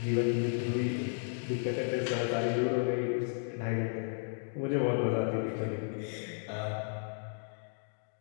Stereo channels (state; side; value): silent; right; digital silence